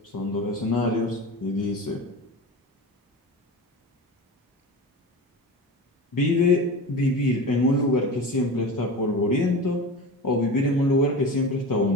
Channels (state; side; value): normal; both; correlation 0.30